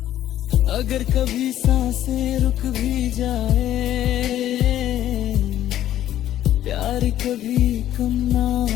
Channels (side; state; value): right; quieter; 12.3 dB